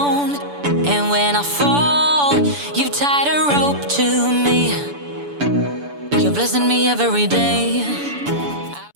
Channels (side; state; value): left; late; 7.0 ms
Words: And when I fall, you tied a rope to me. You're blessing me every day.